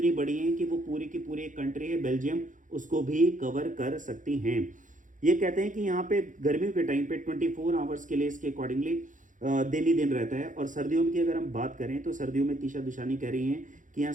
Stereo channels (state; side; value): late; left; 0.37 ms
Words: बड़ी हैं कि वो पूरी की पूरी एक कंट्री है बेल्जियम, उसको भी कवर कर सकती हैं। ये कहते हैं कि यहाँ पे गर्मियों के टाइम पे 24 आवर्स के लिए इसके अकॉर्डिंगली दिन ही दिन रहता है। और सर्दियों की अगर हम बात करें तो सर्दियों में तीशा दुशानी कह रही हैं कि यहाँ